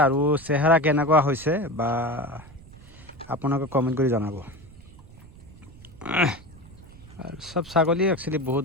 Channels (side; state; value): right; noise; rumble, 20 dB below the sound